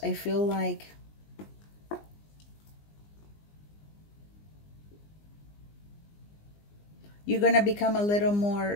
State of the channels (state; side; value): late; right; 20 ms